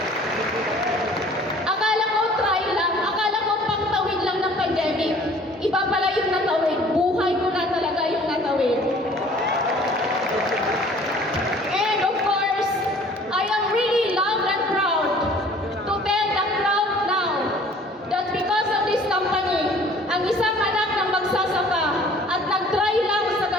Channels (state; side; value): normal; both; correlation 0.52